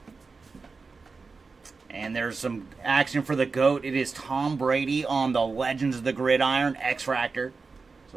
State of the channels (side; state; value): left; quieter; 4.4 dB